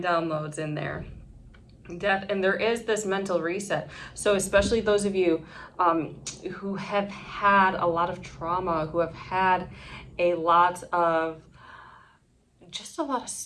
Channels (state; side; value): identical; both; correlation 1.00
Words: downloads in there. Death, and there is this mental reset. So especially those of you who have had a lot of trauma, who have had a lot of